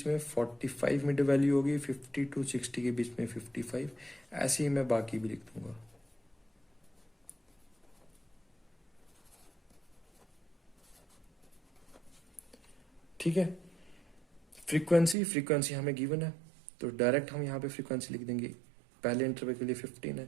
में 45 मिड वैल्यू होगी, 50 to 60 के बीच में 55। ऐसे ही मैं बाकी भी लिख दूंगा। ठीक है, फ्रीक्वेंसी हमें गिवन है, तो डायरेक्ट हम यहाँ पे फ्रीक्वेंसी लिख देंगे। पहले इंटरवल के लिए 15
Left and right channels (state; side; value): drops out; left; at 15.2 s